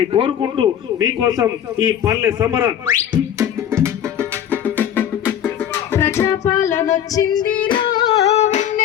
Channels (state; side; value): quieter; right; 9.9 dB